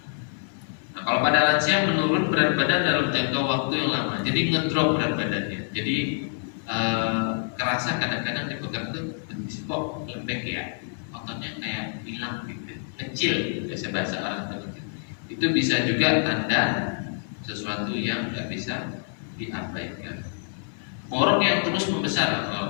Nah, kalau pada lansia menurun berat badan dalam jangka waktu yang lama, jadi ngedrop berat badannya. Jadi kerasa kadang-kadang dipegang tuh kok lembek ya, ototnya kayak hilang gitu, kecil, biasa bahasa orang begitu. Itu bisa juga tanda sesuatu yang nggak bisa diabaikan. Borok yang terus membesar,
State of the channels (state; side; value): silent; right; digital silence